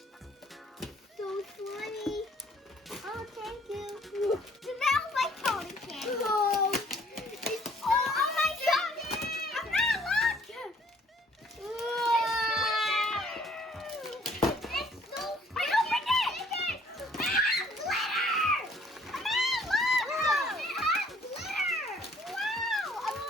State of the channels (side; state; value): both; normal; correlation 0.60